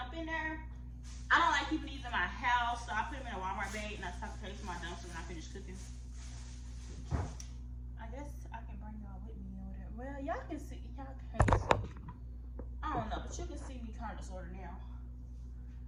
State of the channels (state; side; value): identical; both; correlation 1.00